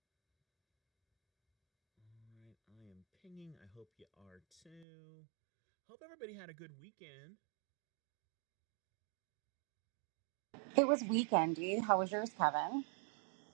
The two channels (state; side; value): drops out; left; at 4.9 s